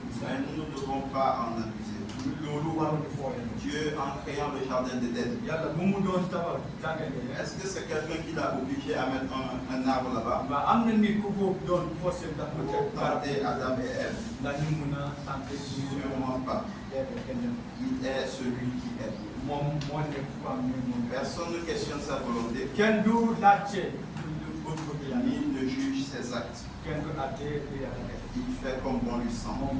Christ. Mais nous ne devons pas en abuser. loolu waruñu fooyee. Dieu, en créant le jardin d'Éden, yàlla bu mu doon tabax jàngale. est-ce que c'est quelqu'un qui l'a obligé à mettre un arbre là-bas waaw am na nit ku ko doon forcé ndax mu pour teg garab tenter Adam et Ève? ndax ñu mun a tenter suñu Sûrement pas. kenn Il est celui qui est. moom moo nekk ku am ne moom. Personne ne questionne sa volonté, kenn du laajte bëgg-bëgg yàlla. ni ne juge ses actes. kenn du laajte lu yàlla def. Il fait comme bon lui semble. moom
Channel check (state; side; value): identical; both; correlation 1.00